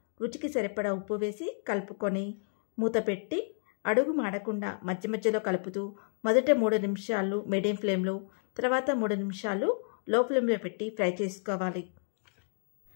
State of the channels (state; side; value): silent; right; digital silence